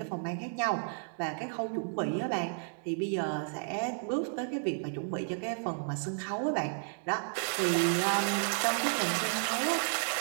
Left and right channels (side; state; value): left; silent; digital silence